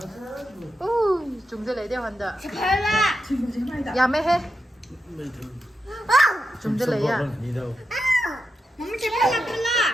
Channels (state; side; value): normal; both; correlation 0.87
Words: chúng tôi lấy đeo hoàn đỡ ya mấy hết chúng tôi lấy à mắm chép lại cái